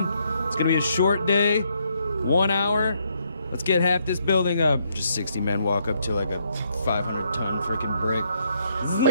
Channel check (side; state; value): both; inverted; correlation -0.74